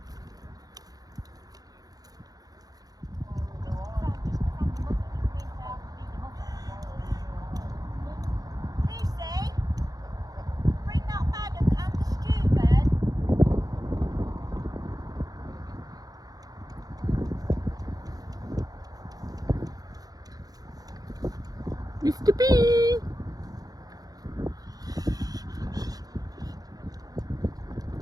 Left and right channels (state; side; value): late; left; 0.18 ms